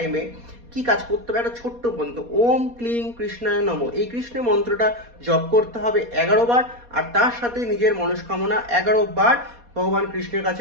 কি কাজ করতে হবে? একটা ছোট্ট মন্ত্র, ওম ক্লিং কৃষ্ণায় নমঃ, এই কৃষ্ণ মন্ত্রটা জপ করতে হবে 11 বার, আর তার সাথে নিজের মনস্কামনা 11 বার ভগবান কৃষ্ণের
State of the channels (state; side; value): late; left; 4.2 ms